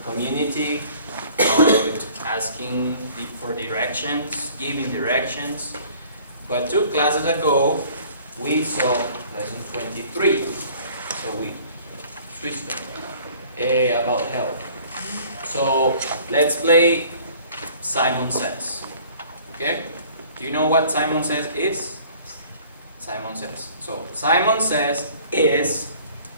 community, about asking for directions, giving directions. But 2 classes ago, we saw lesson 23. So we switched them about health. So let's play Simon Says. Okay? Do you know what Simon Says is? Simon Says. So Simon Says is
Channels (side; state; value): both; inverted; correlation -0.52